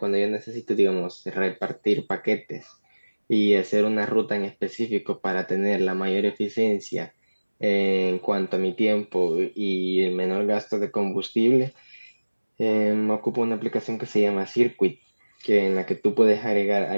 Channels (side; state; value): both; inverted; correlation -1.00